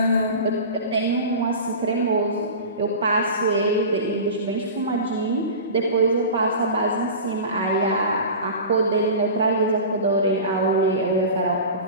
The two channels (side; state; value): both; inverted; correlation -0.33